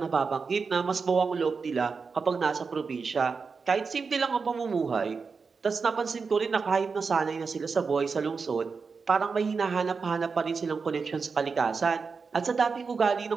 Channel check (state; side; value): quieter; left; 5.0 dB